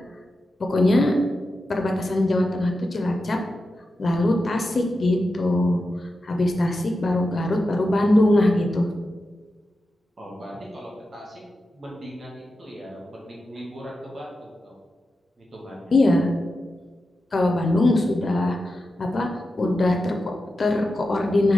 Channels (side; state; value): both; normal; correlation 0.90